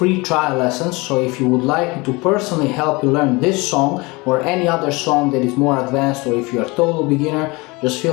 trial lessons, so if you would like me to personally help you learn this song or any other song that is more advanced, or if you're a total beginner, just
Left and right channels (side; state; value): right; quieter; 25.0 dB